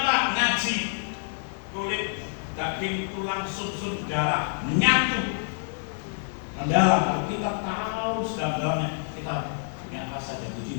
Pak? Ngaji kulit, daging, tulang, sum-sum, darah menyatu, mendalam. Kalau kita tahu sedalam-dalamnya, kita punya rasa jatuh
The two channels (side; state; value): right; silent; digital silence